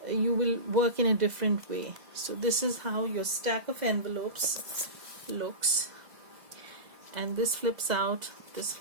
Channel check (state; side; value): late; left; 2.0 ms